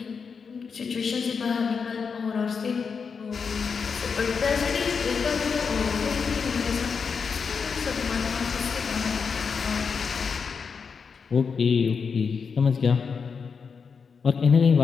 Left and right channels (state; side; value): quieter; right; 5.7 dB